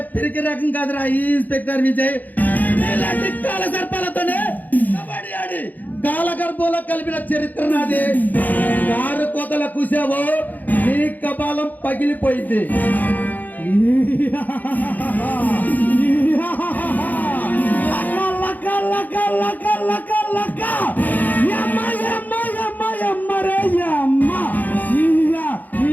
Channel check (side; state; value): right; late; 0.082 ms